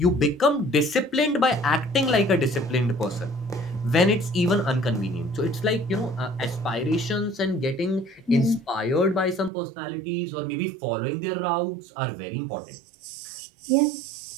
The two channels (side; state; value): left; drops out; at 9.5 s